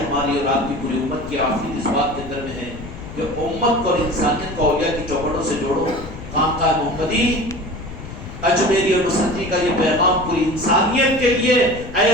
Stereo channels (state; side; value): noise; left; rumble, 12 dB below the sound